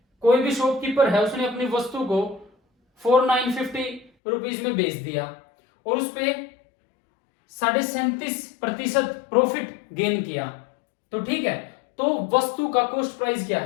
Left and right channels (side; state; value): right; drops out; at 4.1 s